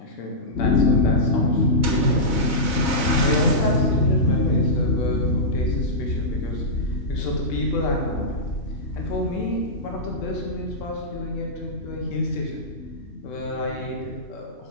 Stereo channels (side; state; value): right; late; 2.2 ms